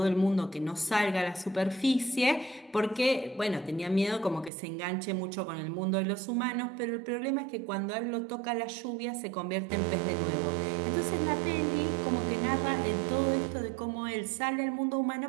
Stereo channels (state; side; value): drops out; left; at 4.5 s